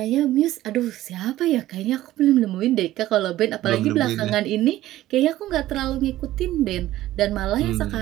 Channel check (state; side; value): quieter; left; 15.0 dB